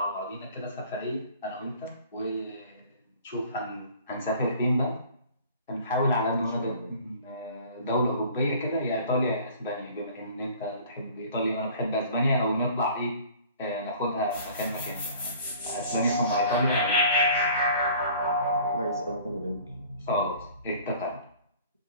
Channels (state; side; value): inverted; both; correlation -0.48